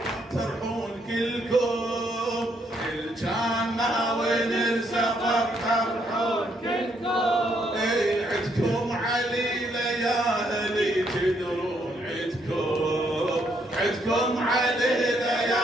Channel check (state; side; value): normal; both; correlation 0.73